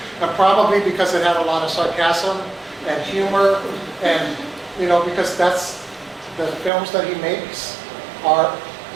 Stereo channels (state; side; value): drops out; left; at 6.7 s